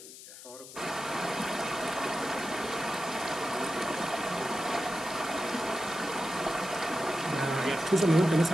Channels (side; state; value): left; noise; hiss, 15 dB below the sound